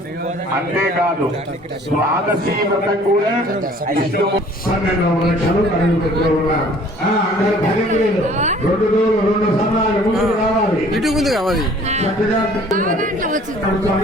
అంతేకాదు ద్వాదశి వ్రతం కూడా ఇష్టము. 12వ ప్రదక్షిణలు అడుగు పెడుతూ ఉన్నాం. అందరూ భరించలేదు. 2 రోజులు 2 సమయాలు ముందు రావాలి. ఇటు ముందు కావాలి. చక్కగా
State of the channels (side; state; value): both; normal; correlation 0.53